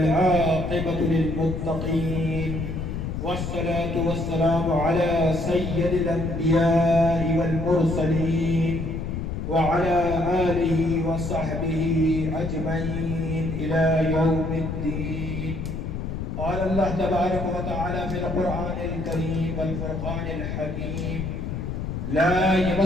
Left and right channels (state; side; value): noise; left; rumble, 4 dB below the sound